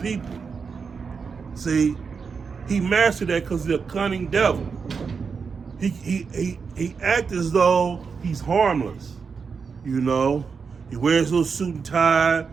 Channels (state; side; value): quieter; left; 5.5 dB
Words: See, he mastered that because he's a cunning devil. He acts as though he's harmless. You know, he wears a little suit and tie.